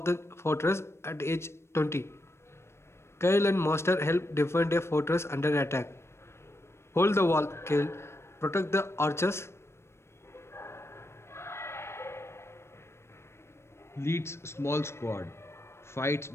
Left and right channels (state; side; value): late; right; 0.13 ms